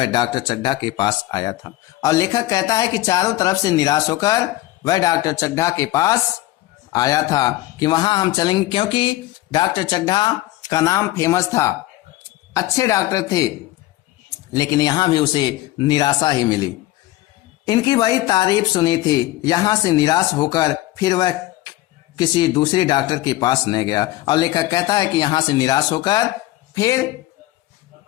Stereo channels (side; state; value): right; quieter; 16.9 dB